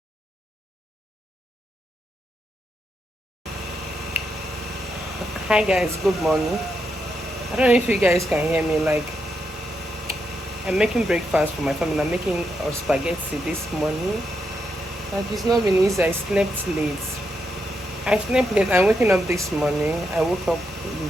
Hi guys, good morning. I don't know if you guys can hear me. Like, I'm making breakfast for my family. I'm making spaghetti this morning. Like, it's not been easy. I slept late. I'm waking up this morning. I woke up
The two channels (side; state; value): both; normal; correlation 0.82